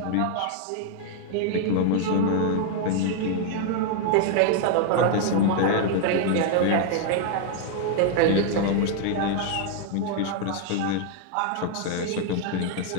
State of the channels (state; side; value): different; both; correlation 0.00